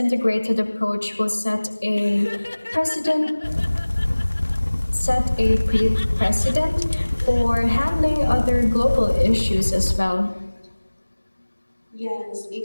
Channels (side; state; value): both; inverted; correlation -1.00